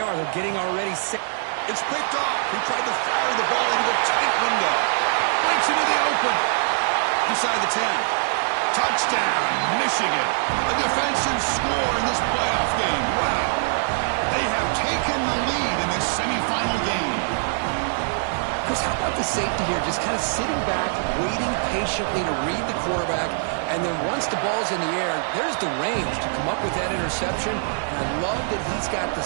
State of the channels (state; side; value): silent; left; 57 dB below the other